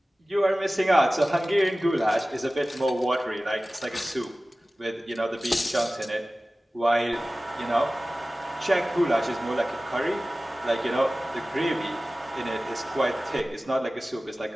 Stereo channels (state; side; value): normal; both; correlation 0.97